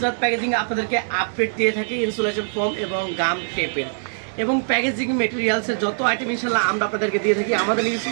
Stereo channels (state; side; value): silent; left; digital silence